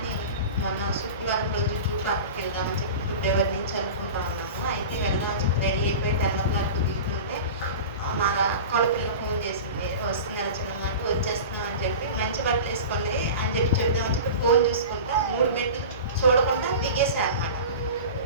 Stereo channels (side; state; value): both; inverted; correlation -0.33